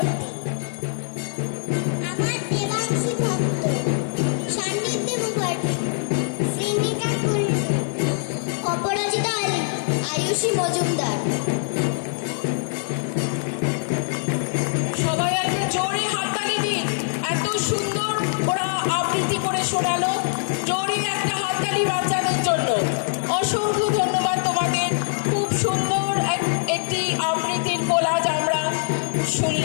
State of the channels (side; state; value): right; silent; digital silence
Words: আমার দেবাংশী ভক্ত।